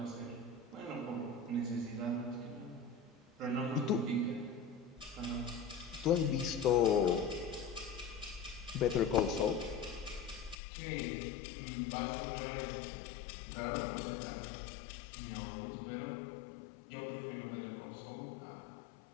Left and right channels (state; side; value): drops out; right; at 10.6 s